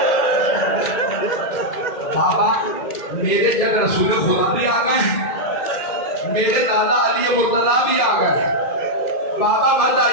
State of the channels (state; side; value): late; right; 2.5 ms